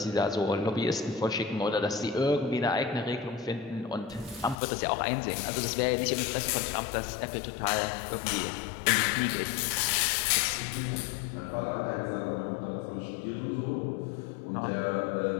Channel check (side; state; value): right; drops out; at 4.5 s